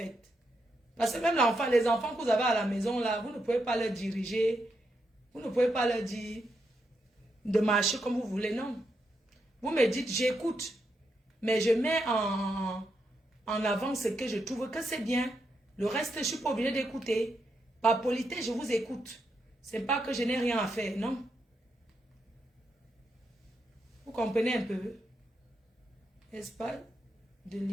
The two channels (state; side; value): normal; both; correlation 0.82